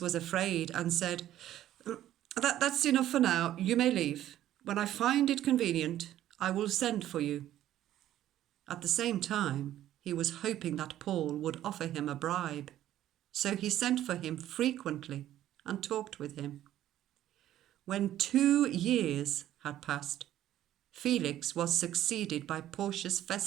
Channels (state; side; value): quieter; left; 12.7 dB